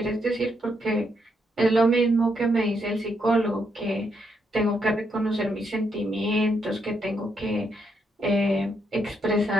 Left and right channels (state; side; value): normal; both; correlation 0.78